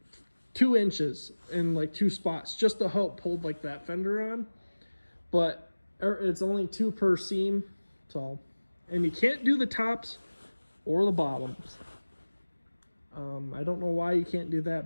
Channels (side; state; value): both; inverted; correlation -1.00